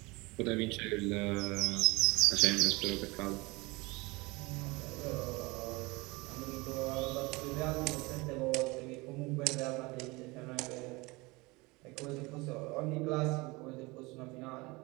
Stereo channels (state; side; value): quieter; left; 24.0 dB